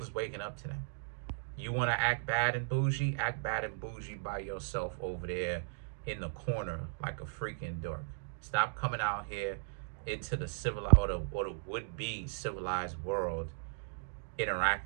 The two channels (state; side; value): silent; left; digital silence